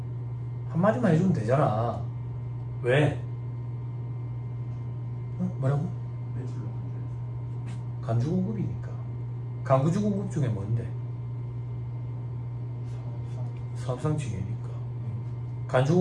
한마디만 해주면 되잖아. 왜? 뭐라고? 간주공급이니까. 간주공급 중에 뭔데? 사업상징이니까.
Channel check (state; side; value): identical; both; correlation 1.00